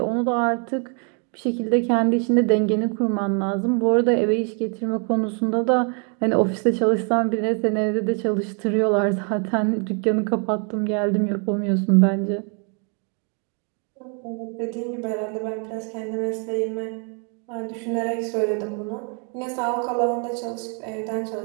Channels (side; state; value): left; quieter; 38.3 dB